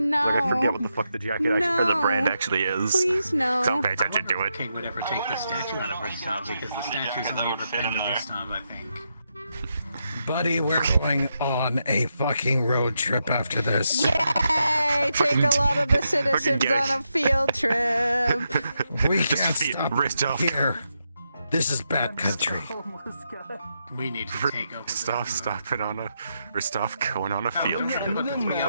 Like I forget what the fuck the jacket or the brand actually is. Please no. Don't pay attention to it. King would ever take the statue out of Ristov because the statue's only ever fit in Ristov, I think. Buddy, we're going on a fucking road trip after this. Yay! take a lot of the citizens on a field trip. We Just can't feed stop Ristov. here. This is bad country. We need to take over. Ristov going on a field trip. But the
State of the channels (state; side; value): inverted; both; correlation -0.83